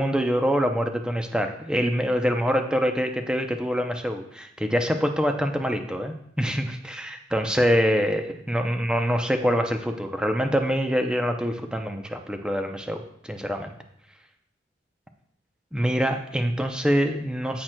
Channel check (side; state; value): both; normal; correlation 0.87